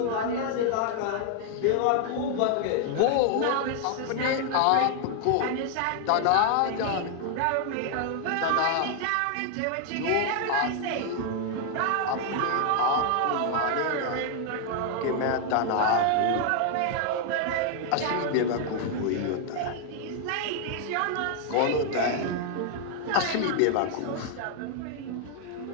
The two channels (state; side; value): different; both; correlation 0.00